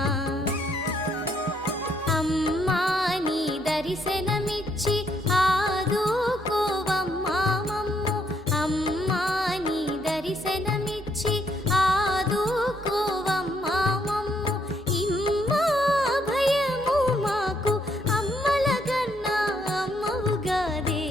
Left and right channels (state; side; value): normal; both; correlation 0.72